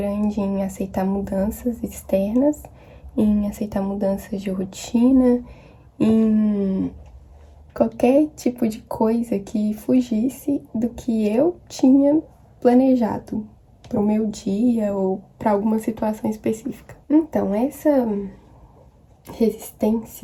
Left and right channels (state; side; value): identical; both; correlation 1.00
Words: em aceitar mudanças externas, em aceitar mudanças de rotina, em qualquer tipo de coisa que fugisse do que eu tinha planejado para o meu dia ou para alguma situação específica. Então, essa